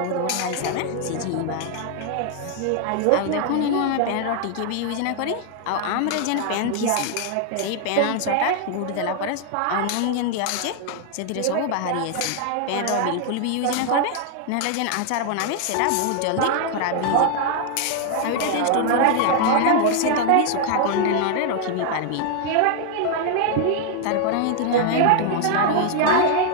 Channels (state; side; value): different; both; correlation 0.00